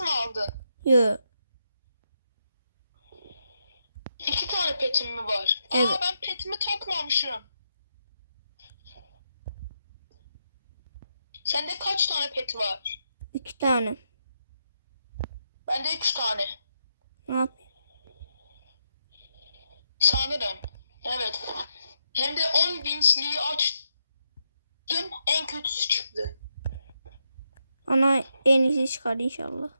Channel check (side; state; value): both; inverted; correlation -0.82